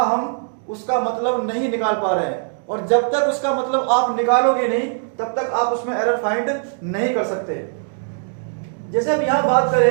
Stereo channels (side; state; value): left; silent; digital silence